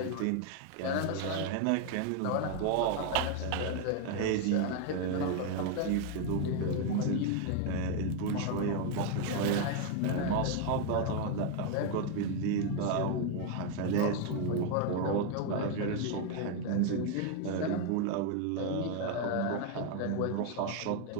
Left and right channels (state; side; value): different; both; correlation 0.01